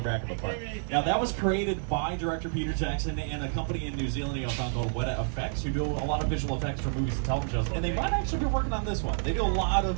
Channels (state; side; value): silent; left; digital silence